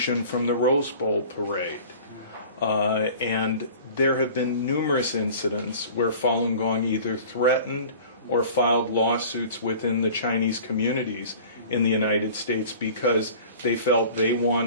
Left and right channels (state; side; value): inverted; both; correlation -0.44